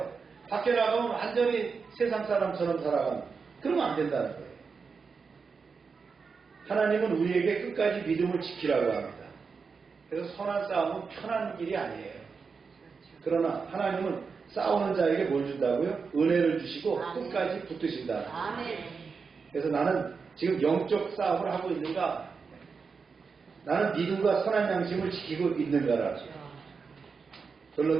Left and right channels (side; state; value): left; quieter; 5.2 dB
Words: 밖에 나가면 완전히 세상 사람처럼 살아가는. 그러면 안 된다는 거예요. 하나님은 우리에게 끝까지 믿음을 지키라고 합니다. 그래서 선한 싸움은 편한 길이 아니에요. 그러나 하나님은 싸우는 자에게 뭘 준다고요? 은혜를 주시고 끝까지 붙드신다. 아멘. 그래서 나는 지금 영적 싸움을 하고 있는가? 나는 믿음과 선한 양심을 지키고 있는가라.